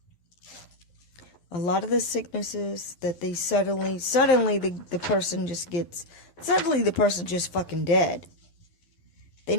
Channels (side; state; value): right; late; 11 ms